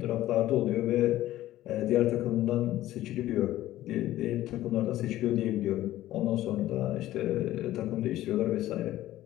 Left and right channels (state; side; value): quieter; right; 14.7 dB